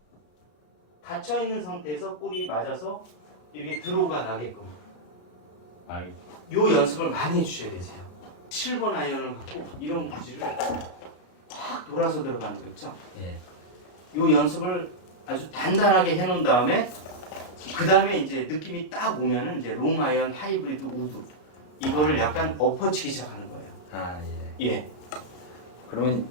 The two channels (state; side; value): late; right; 33 ms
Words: 닫혀있는 상태에서 볼이 맞아서 이렇게 드로우가 나게끔 알겠습니다. 요 연습을 많이 해주셔야 되세요. 7번 아이언을 갖고 이런 구질을 확 돌아서 들어가는 거 있죠? 예. 요 연습을 아주 단단하게 해놓은 다음에 그 다음에 이제 느낌이 딱 오면은 이제 롱 아이언, 하이브리드, 우드 이거를 약간 엎어치기 시작하는 거예요. 아 예. 예, 그러면